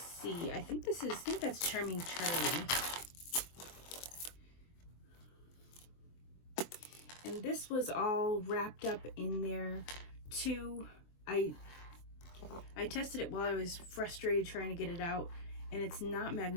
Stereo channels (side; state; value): right; late; 23 ms